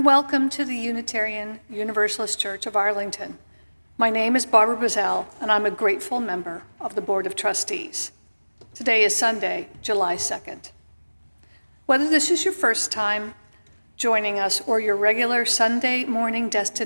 welcome to the Unitarian Universalist Church of Arlington. My name is Barbara Bazell, and I'm a grateful member of the Board of Trustees. Today is Sunday, July 2nd. Whether this is your first time joining us or your regular Sunday morning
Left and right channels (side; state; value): both; inverted; correlation -1.00